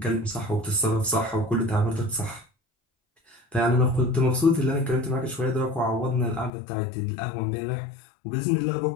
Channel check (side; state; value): right; drops out; at 6.5 s